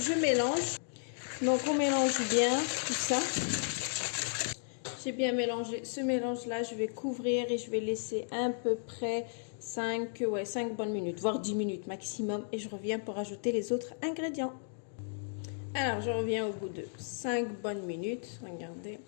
mélange. Donc on mélange bien tout ça. J'ai bien mélangé ce mélange-là. Je vais couvrir et je vais laisser à peu près 5 bonnes minutes, voire 10 minutes maximum. Et je reviens pour ajouter les autres ingrédients. Alors, je reviens au bout de 5 bonnes minutes. Regardez.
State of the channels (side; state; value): right; silent; digital silence